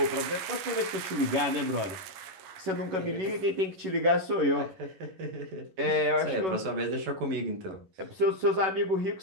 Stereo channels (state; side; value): late; left; 11 ms